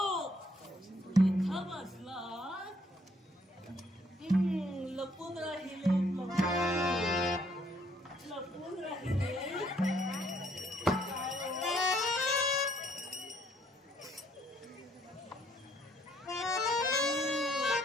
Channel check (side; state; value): both; normal; correlation 0.67